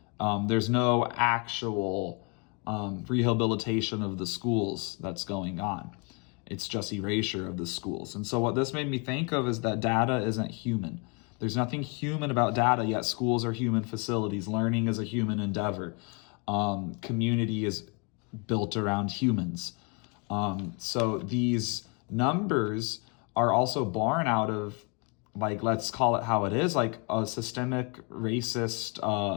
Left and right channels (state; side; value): quieter; right; 33.7 dB